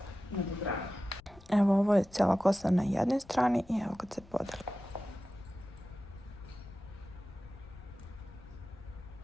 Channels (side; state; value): left; noise; rumble, 22 dB below the sound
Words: nadogradnje. Evo, ovo je cijela kosa na jednoj strani i evo kad se podeli.